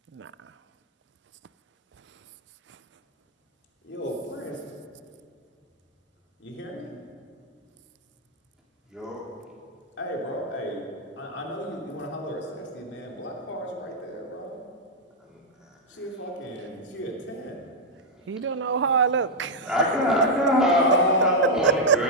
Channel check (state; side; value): normal; both; correlation -0.02